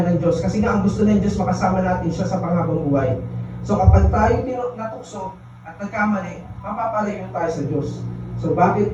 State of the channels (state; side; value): identical; both; correlation 1.00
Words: ng Diyos kasi nga ang gusto ng Diyos makasama natin siya sa panghabang buhay. So kapag tayo natukso at nagkamali, mapapalayo tayo sa Diyos. So